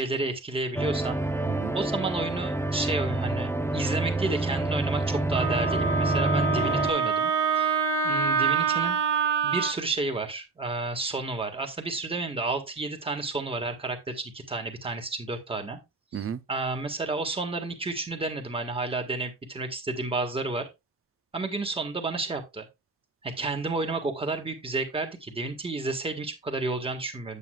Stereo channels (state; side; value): quieter; left; 3.1 dB